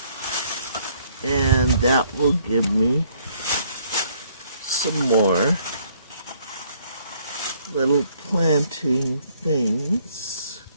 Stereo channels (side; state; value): both; inverted; correlation -0.65